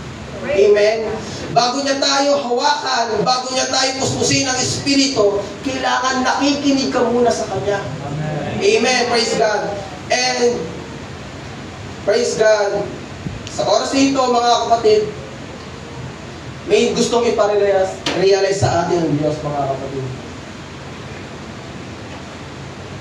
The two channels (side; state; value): both; identical; correlation 1.00